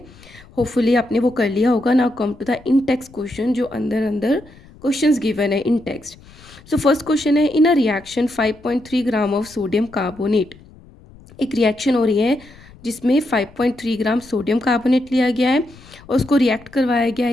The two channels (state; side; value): noise; left; rumble, 23 dB below the sound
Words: होपफुली आपने वो कर लिया होगा. Now come to the in text question जो अंदर अंदर क्वेश्चंस गिवन है in text. So first question है, in a reaction 5.3 gram of sodium carbonate. एक रिएक्शन हो रही है जिसमें 5.3 ग्राम सोडियम कार्बोनेट लिया गया है और उसको रिएक्ट करवाया गया